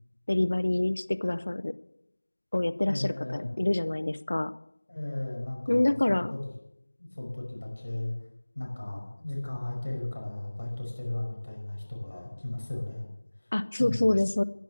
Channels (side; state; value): both; inverted; correlation -1.00